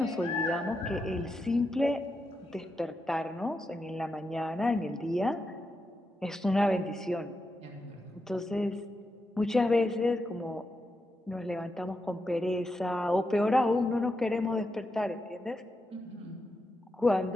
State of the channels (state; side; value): normal; both; correlation 0.86